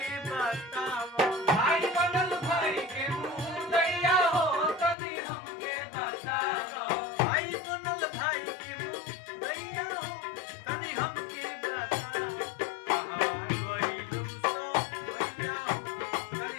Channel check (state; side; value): drops out; right; at 5.0 s